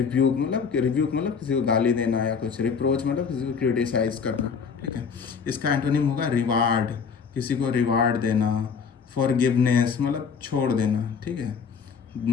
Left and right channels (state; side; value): quieter; right; 6.1 dB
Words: मतलब किसी को गाली देना या कुछ, रिप्रोच मतलब किसी को क्रिटिसाइज करना। ठीक है, इसका एंटोनिम होगा रिवार्ड, किसी को रिवार्ड देना। फॉरगिवनेस मतलब छोड़ देना। ठीक है,